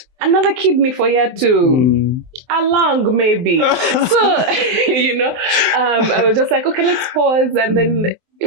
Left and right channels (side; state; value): left; late; 23 ms